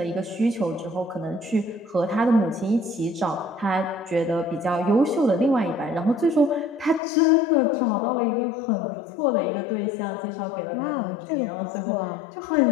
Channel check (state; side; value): drops out; right; at 7.0 s